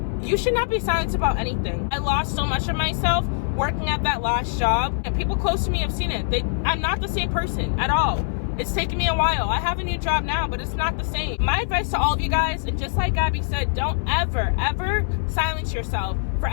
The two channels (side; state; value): right; silent; 63 dB below the other